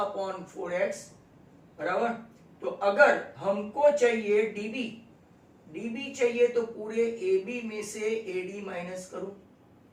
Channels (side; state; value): both; identical; correlation 1.00